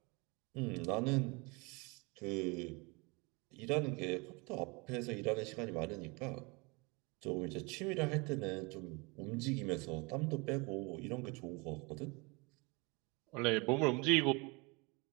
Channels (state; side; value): quieter; left; 28.2 dB